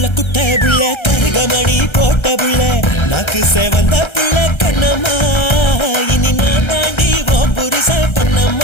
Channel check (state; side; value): late; right; 1.3 ms